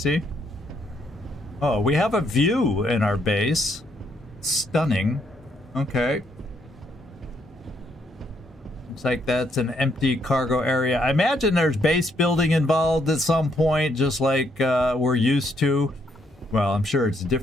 Oh, we have a view in our base. Stunning. Okay. Looks like that's an empty cargo area. I imagine there's base building involved at some point, just like we're used to. Well, I'm sure it's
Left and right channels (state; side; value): normal; both; correlation 0.73